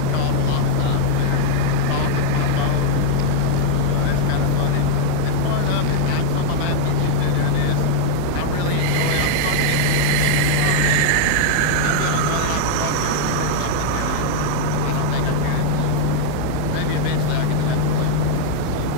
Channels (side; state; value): both; different; correlation -0.01